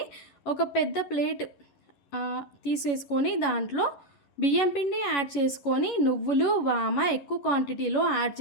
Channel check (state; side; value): late; right; 11 ms